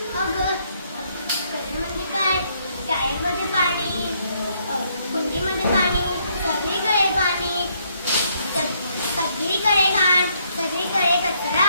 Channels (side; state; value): both; inverted; correlation -0.71